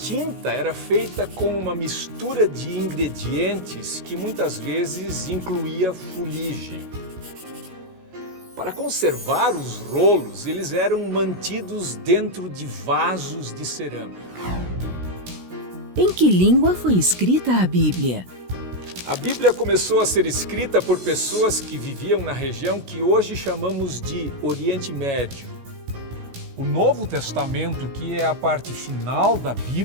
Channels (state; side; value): late; left; 16 ms